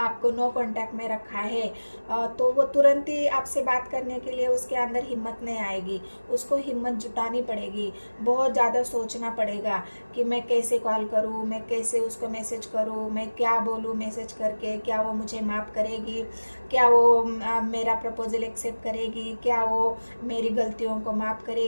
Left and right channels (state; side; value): inverted; both; correlation -1.00